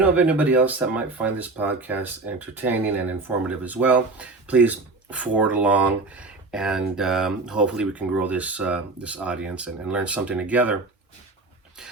of anybody else that might find this podcast entertaining and informative as well, please forward along, and hopefully we can grow this audience and learn something together.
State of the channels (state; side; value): quieter; left; 3.4 dB